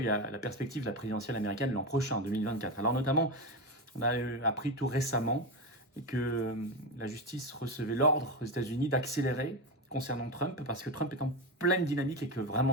il y a la perspective de la présidentielle américaine l'an prochain, 2024. Alors notamment, on a appris tout récemment que la justice recevait l'ordre aux États-Unis d'accélérer concernant Trump parce que Trump est en pleine dynamique et que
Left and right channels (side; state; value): both; normal; correlation 0.16